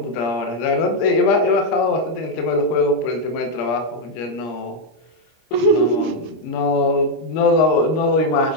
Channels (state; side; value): late; right; 25 ms